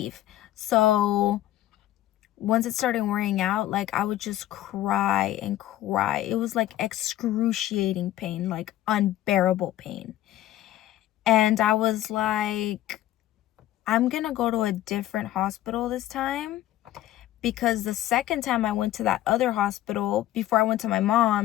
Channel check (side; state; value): right; quieter; 14.0 dB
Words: So once it started wearing out, like I would just cry and cry. It was like excruciating pain, like unbearable pain. And I was like, I'm gonna go to a different hospital this time, because the second time I went to that other hospital before I went to my